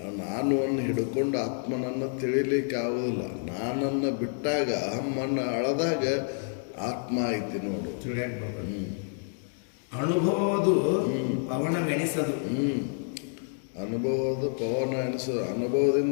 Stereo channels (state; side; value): silent; right; 59 dB below the other